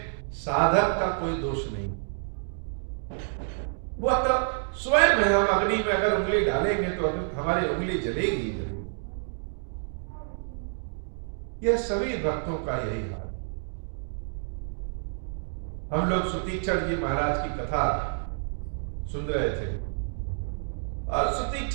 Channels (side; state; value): left; silent; digital silence